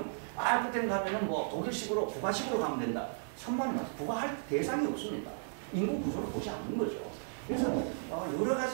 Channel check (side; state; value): left; silent; 55 dB below the other